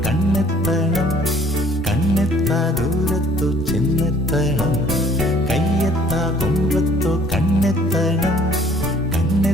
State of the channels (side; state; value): both; normal; correlation 0.57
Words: കണ്ണെത്തണം കണ്ണെത്താ ദൂരത്തോ ചെന്നെത്തണം കയ്യെത്താ കൊമ്പത്തോ കണ്ണെത്തണം